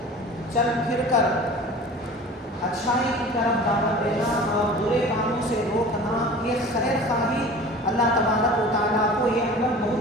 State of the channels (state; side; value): normal; both; correlation 0.41